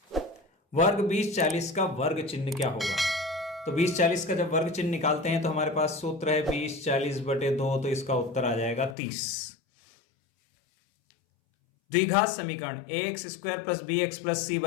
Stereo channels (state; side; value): drops out; right; at 9.0 s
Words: वर्ग 20-40 का वर्ग चिन्ह क्या होगा? तो 20-40 का जब वर्ग चिन्ह निकालते हैं तो हमारे पास सूत्र है 20/40/2, तो इसका उत्तर आ जाएगा 30। द्विघात समीकरण ax² + bx + c